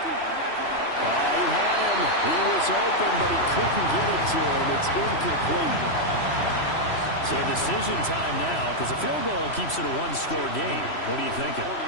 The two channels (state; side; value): late; right; 3.0 ms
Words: Oh, he had it. him. He was open, but he couldn't get it to him. It's incomplete. So decision time now, because a field goal keeps it a one-score game. What are you thinking?